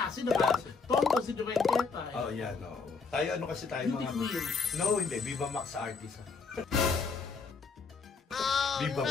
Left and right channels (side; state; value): right; quieter; 4.9 dB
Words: Tondo, si Divine Tetay. Oh, yan, oo. Tayo, ano kasi tayo Hindi mga... queen. No, hindi. Viva Max artist. Viva